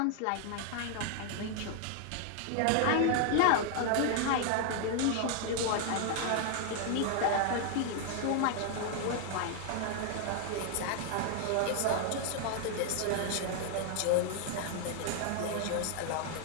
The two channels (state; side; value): different; both; correlation 0.00